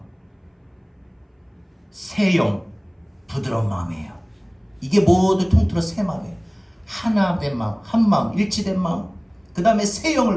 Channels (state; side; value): identical; both; correlation 1.00